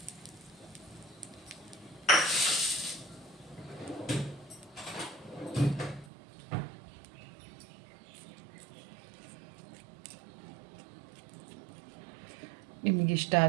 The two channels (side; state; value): left; drops out; at 6.1 s